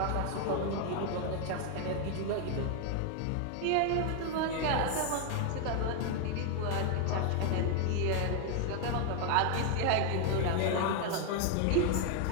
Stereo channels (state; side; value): different; both; correlation 0.01